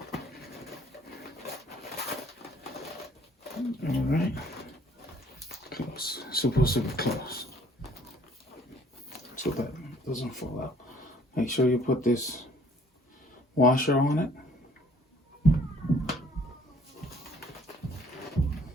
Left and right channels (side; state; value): both; normal; correlation 0.59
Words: All right. Close. It's supposed to be close, so that doesn't fall out. Make sure you put this washer on it.